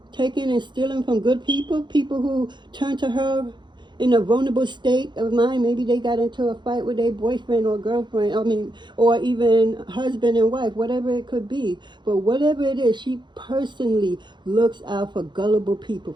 taking and stealing from good people who turn to her in a vulnerable state of mind. Maybe they got into a fight with their boyfriend or girlfriend, or even husband and wife, whatever it could be. But whatever it is, she personally looks out for gullible people,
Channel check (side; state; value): left; late; 0.22 ms